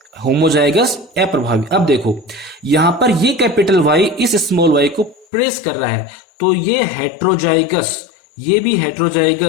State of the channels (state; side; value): drops out; right; at 5.2 s